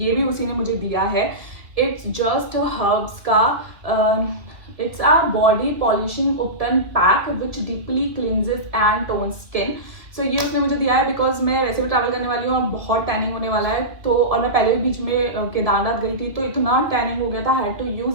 ये भी उसी ने मुझे दिया है. इट्स जस्ट हर्ब्स का it's a body polishing upton pack which deeply cleanses and tones skin. So ये उसने मुझे दिया है बिकॉज मैं वैसे भी ट्रैवल करने वाली हूँ और बहुत टैनिंग होने वाला है. तो और मैं पहले भी बीच में केदारनाथ गई थी तो इतना टैनिंग हो गया था, हैड टू यूज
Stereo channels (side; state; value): left; late; 1.9 ms